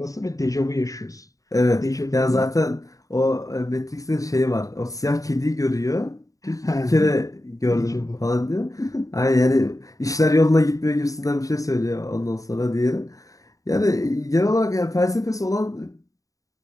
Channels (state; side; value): late; right; 0.16 ms